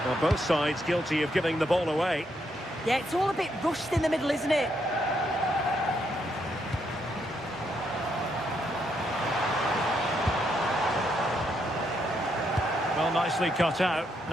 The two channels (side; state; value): both; normal; correlation 0.77